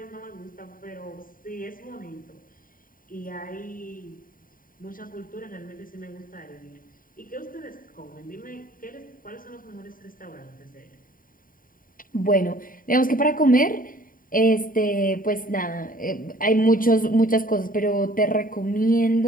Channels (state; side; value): late; right; 0.41 ms